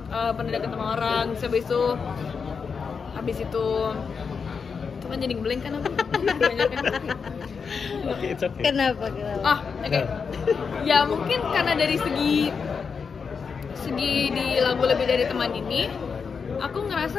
pernah deket sama orang, habis itu kan jadi ngeblank kan aku. Okay, it's okay. Kenapa? Oke. Ya mungkin karena dari segi di lagu lebih dari teman ini, aku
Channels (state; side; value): quieter; right; 5.7 dB